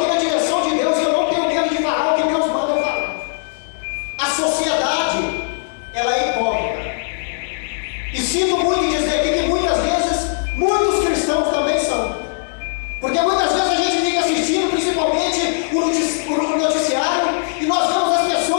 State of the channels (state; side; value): silent; right; 66 dB below the other